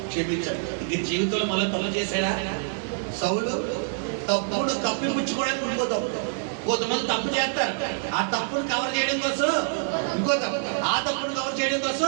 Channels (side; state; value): left; silent; digital silence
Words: క్షమించాడు. ఇంక జీవితంలో మళ్ళీ తప్పు చేశాడా? సౌలు తప్పుడు కప్పిపుచ్చుకోవడానికి ఇంకో తప్పు. కొంతమంది తప్పు చేస్తారు, ఆ తప్పును కవర్ చేయడం కోసం ఇంకో తప్పు, ఆ తప్పును కవర్ చేయడం